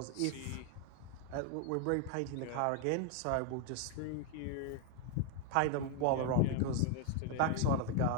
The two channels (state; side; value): different; both; correlation 0.00